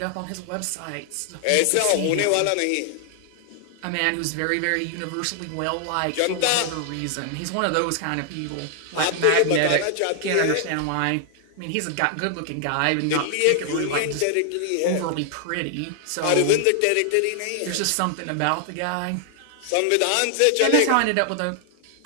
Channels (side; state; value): both; different; correlation 0.00